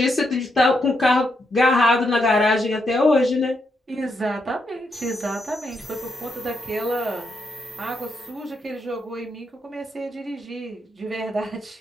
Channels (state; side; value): normal; both; correlation 0.80